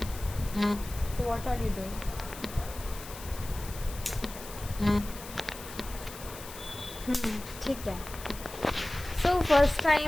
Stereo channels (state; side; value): noise; left; hiss, 14 dB below the sound